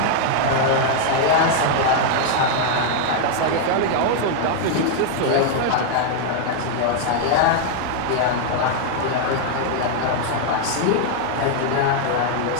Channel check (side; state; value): both; different; correlation 0.00